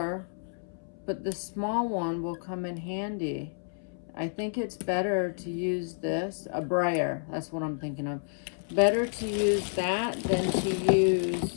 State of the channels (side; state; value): right; silent; 58 dB below the other